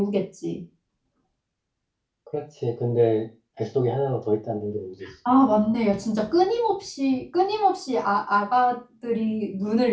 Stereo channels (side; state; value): both; identical; correlation 1.00